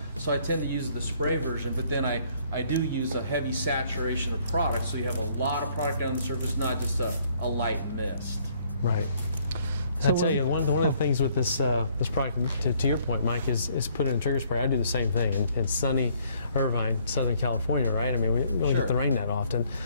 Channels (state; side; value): inverted; both; correlation -0.64